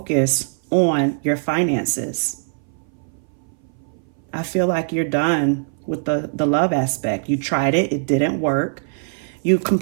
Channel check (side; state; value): left; silent; 60 dB below the other